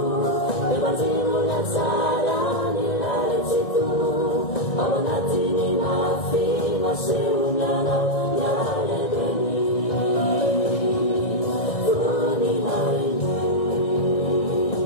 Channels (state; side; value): late; right; 1.7 ms